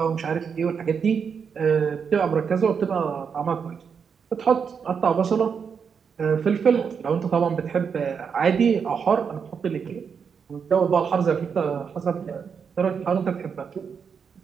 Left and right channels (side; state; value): left; quieter; 6.5 dB